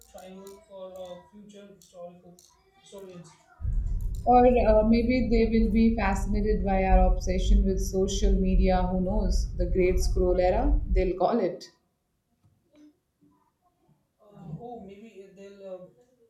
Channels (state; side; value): identical; both; correlation 1.00